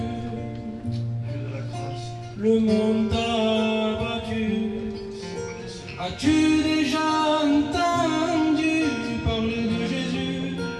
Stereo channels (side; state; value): both; identical; correlation 1.00